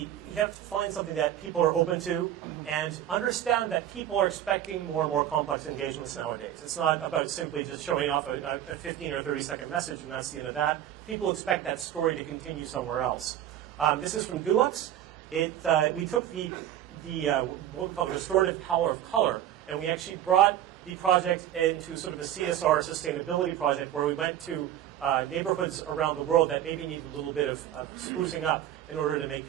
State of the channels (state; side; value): quieter; left; 11.5 dB